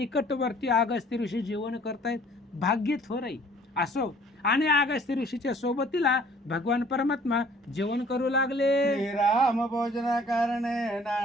अगस्ती ऋषी जेवण करतायत. भाग्य थोर आहे. असो. आणि अगस्त्य ऋषीच्या सोबतीला भगवान परमात्मा जेवण करू लागले. श्रीराम भोजना कारणे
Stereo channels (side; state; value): both; normal; correlation 0.55